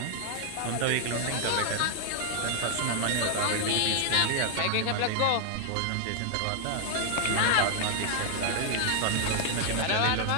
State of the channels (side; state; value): both; different; correlation 0.00